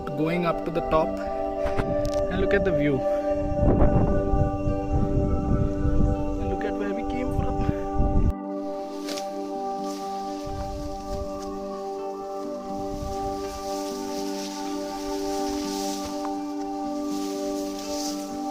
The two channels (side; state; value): both; identical; correlation 1.00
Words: going up to the top, and look at the view. And look at where we came from.